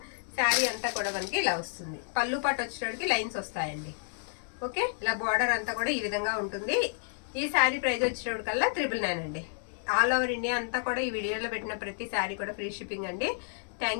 శారీ అంతా కూడా మనకి ఇలా వస్తుంది, పళ్ళు పాటు వచ్చేటప్పటికి లైన్స్ వస్తాయండి. ఓకే, ఇలా బార్డర్ అంతా కూడా ఈ విధంగా ఉంటుంది. ఈ శారీ ప్రైస్ వచ్చేటప్పటికల్లా 999 అండి. ఆల్ ఓవర్ ఇండియా అంతా కూడా ఈ వీడియోలో పెట్టిన ప్రతి శారీ కూడా ఫ్రీ షిప్పింగ్ అండి.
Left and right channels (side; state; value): right; silent; digital silence